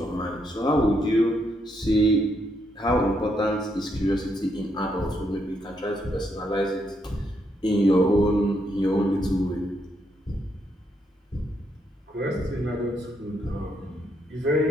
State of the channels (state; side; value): normal; both; correlation 0.77